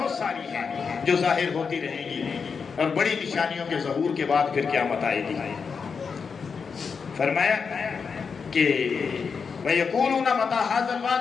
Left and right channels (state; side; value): quieter; right; 5.7 dB